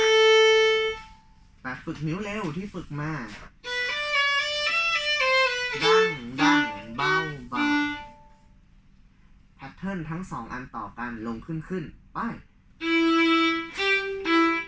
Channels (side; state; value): both; identical; correlation 1.00